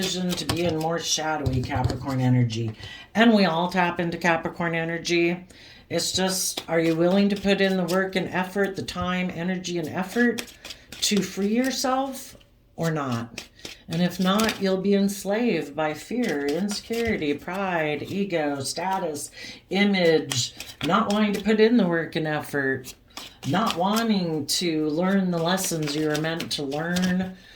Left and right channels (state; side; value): identical; both; correlation 1.00